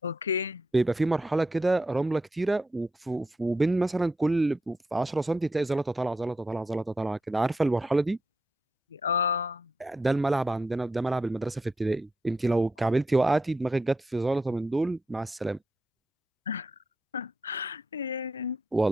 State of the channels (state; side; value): normal; both; correlation 0.83